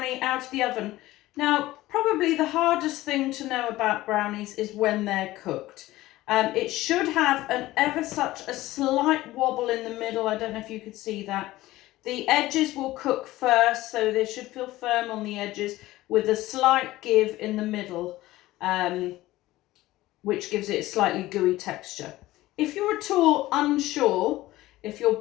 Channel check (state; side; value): quieter; right; 17.1 dB